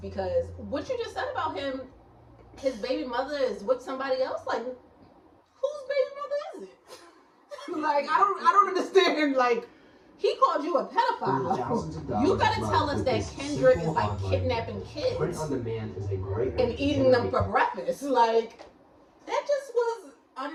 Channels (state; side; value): identical; both; correlation 1.00